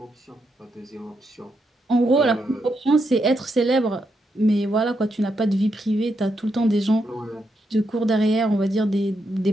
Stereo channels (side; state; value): both; normal; correlation 0.81